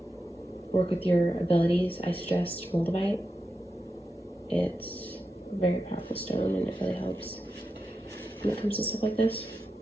work with your abilities, I suggest Moldavite. It's a very powerful stone, and it really helps when it comes to stuff like this.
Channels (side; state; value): both; normal; correlation 0.89